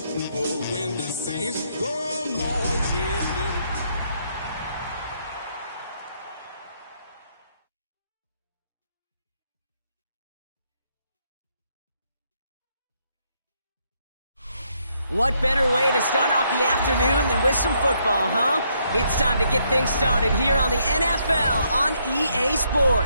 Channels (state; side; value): inverted; both; correlation -0.74